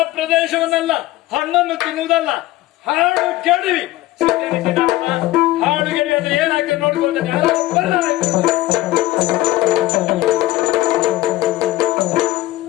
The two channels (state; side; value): quieter; right; 16.9 dB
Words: ಪ್ರದೇಶವನ್ನೆಲ್ಲ ಹಣ್ಣನ್ನು ತಿನ್ನುವುದಲ್ಲ, ಹಾಡು ಕೆಡವಿ ಹಾಡು ಗೆಡಿ ಅಂದ್ರೆ ಏನಾಗ್ತದೆ ನೋಡ್ಕೊಳ್ತೇನೆ.